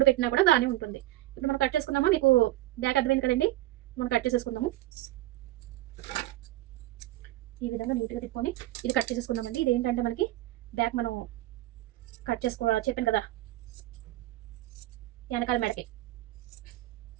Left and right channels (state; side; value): quieter; left; 16.4 dB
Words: పెట్టినా కూడా బాగానే ఉంటుంది. ఇప్పుడు మనం కట్ చేసుకుందామా? మీకు బ్యాక్ అర్థమైంది కదండి. మనం కట్ చేసేసుకుందాము. ఈ విధంగా నీట్గా తిప్పుకొని ఇది కట్ చేసేసుకుందామండి. ఇది ఏంటంటే మనకి బ్యాక్ మనం కట్ చేసుకోవాలి చెప్పాను కదా, వెనకాల మెడకి